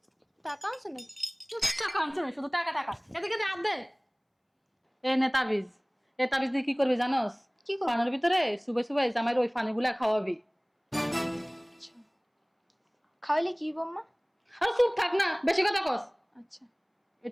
টাকা আছে নাকি? টাকা আনছে না, শুধু টাকা টাকা। এদিকে দে, হাত দে। এ নে তাবিজ। এ তাবিজ দিয়ে কি করবি জানোস? কি করবো? পানের ভিতরে সুবে সুবে জামাইয়ের ওই ফানিগুলা খাওয়াবি। আচ্ছা, খাওয়াইলে কি বম্মা? আর চুপ থাক না, বেশি কথা কস। আচ্ছা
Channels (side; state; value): both; identical; correlation 1.00